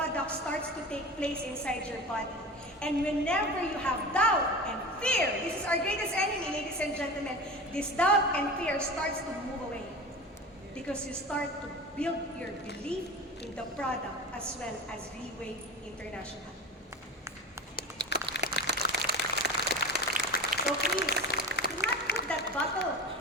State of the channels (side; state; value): both; normal; correlation 0.31